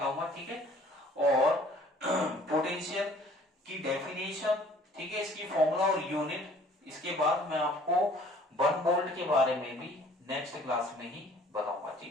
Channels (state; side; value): normal; both; correlation 0.54